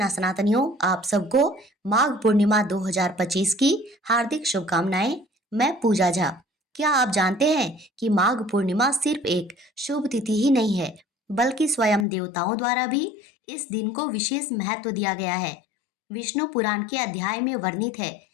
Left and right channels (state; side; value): drops out; right; at 12.1 s